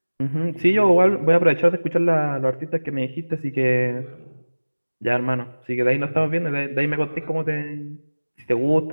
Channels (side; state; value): both; inverted; correlation -1.00